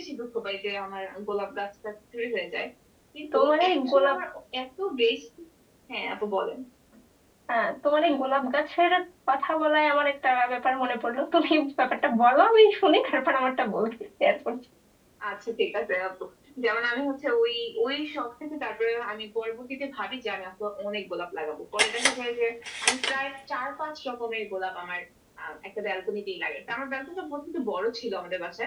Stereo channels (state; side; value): identical; both; correlation 1.00